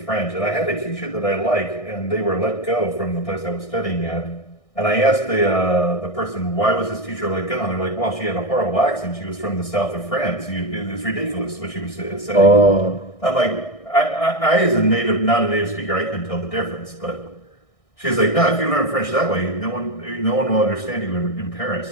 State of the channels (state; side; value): late; right; 1.6 ms